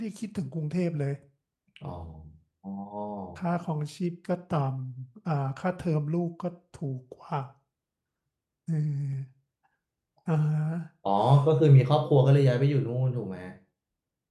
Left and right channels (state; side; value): identical; both; correlation 1.00